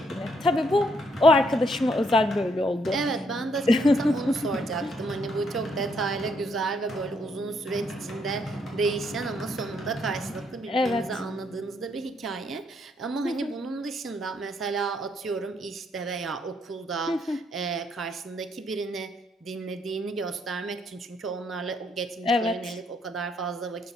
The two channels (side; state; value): both; normal; correlation 0.72